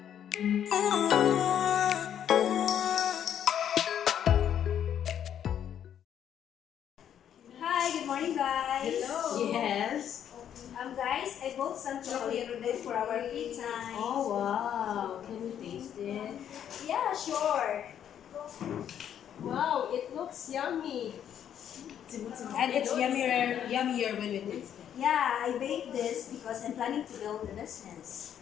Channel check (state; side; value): quieter; right; 9.6 dB